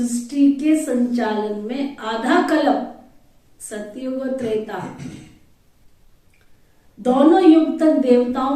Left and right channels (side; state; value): both; identical; correlation 1.00